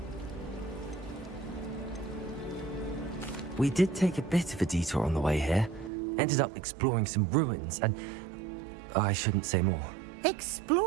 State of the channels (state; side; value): drops out; left; at 5.9 s